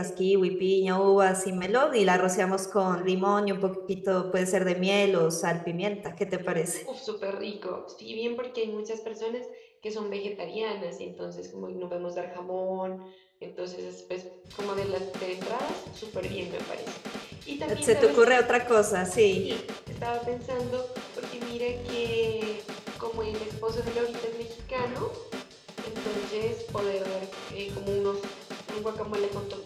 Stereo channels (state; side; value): identical; both; correlation 1.00